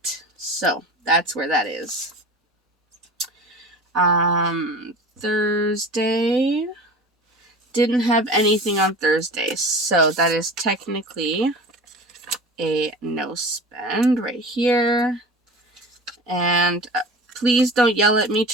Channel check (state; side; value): normal; both; correlation 0.36